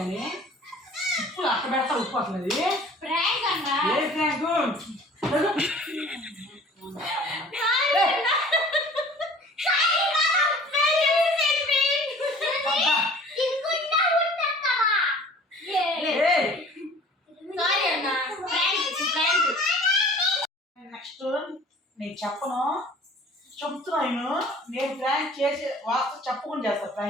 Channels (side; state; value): both; normal; correlation 0.48